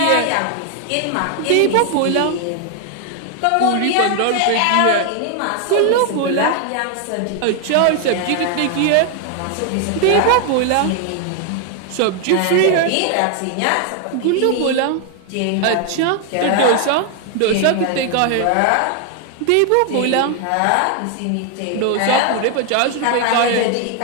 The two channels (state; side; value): different; both; correlation 0.00